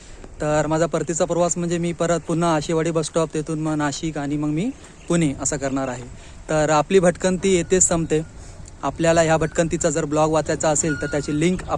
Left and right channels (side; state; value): both; identical; correlation 1.00